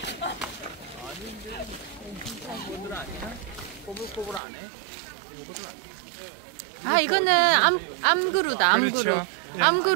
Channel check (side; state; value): left; drops out; at 4.4 s